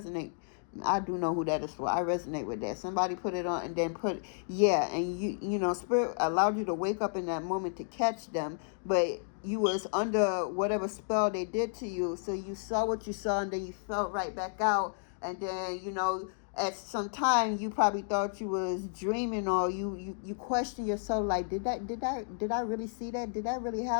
I do know who that is for. I resonate with that. Somebody put it on and then and spirit allowed you to wake up in that moment to catch them, but you was under whatever spell they did to you, so you saw what you saw, and then you fell right back out, and then at some time you probably thought you was dreaming, or you question yourself, like, did I really see that? Did that really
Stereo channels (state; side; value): silent; right; digital silence